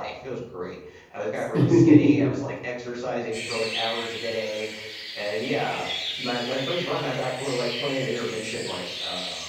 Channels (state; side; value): identical; both; correlation 1.00